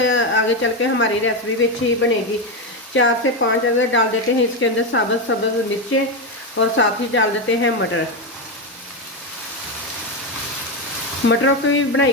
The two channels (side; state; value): both; normal; correlation 0.10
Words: चल के हमारी रेसिपी भी अच्छी बनेगी। 4 से 5 अगर डाल देते हैं इसके अंदर सब्ज़ मिर्चें और साथ ही डाल देते हैं मटर। मटरों की भी बनाई